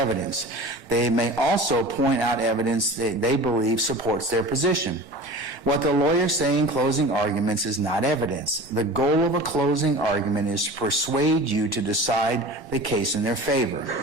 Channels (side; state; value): right; late; 1.0 ms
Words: They may also point out evidence that they believe supports their position. What the lawyers say in closing arguments is not evidence. The goal of a closing argument is to persuade you to decide the case in their favor.